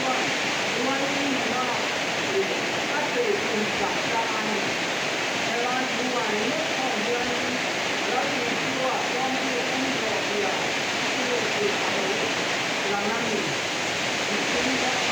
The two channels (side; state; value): right; noise; hiss, 25 dB below the sound